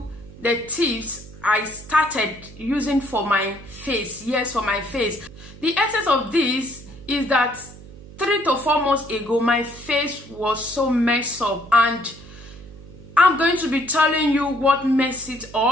the tips I started using for my face. Yes, for my face. The essence of this is that 3 to 4 months ago, my face was so messed up, and I'm going to be telling you what messed it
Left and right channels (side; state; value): right; noise; hum, 18 dB below the sound